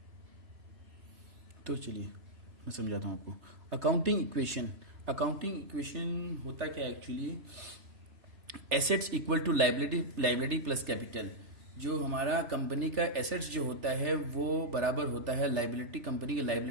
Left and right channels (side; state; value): left; late; 3.3 ms